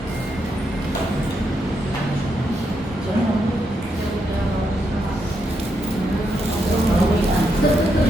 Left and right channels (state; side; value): normal; both; correlation 0.81